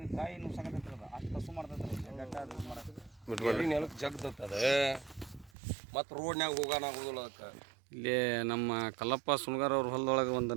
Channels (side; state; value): left; drops out; at 5.5 s